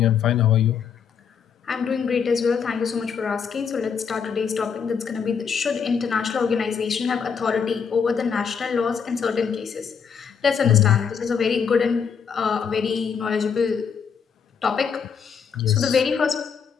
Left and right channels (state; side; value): quieter; right; 6.7 dB